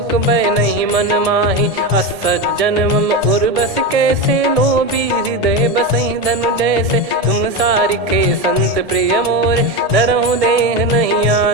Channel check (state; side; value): late; left; 1.8 ms